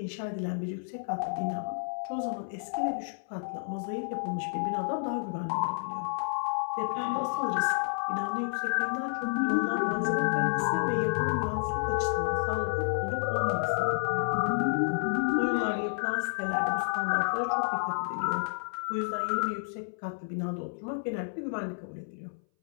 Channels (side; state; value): right; silent; 58 dB below the other